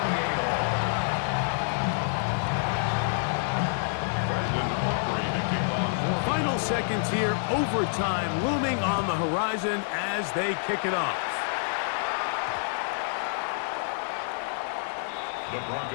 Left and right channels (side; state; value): right; silent; digital silence